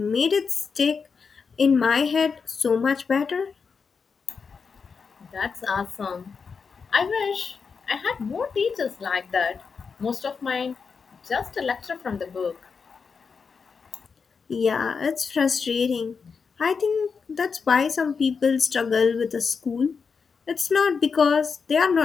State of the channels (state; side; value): quieter; right; 5.5 dB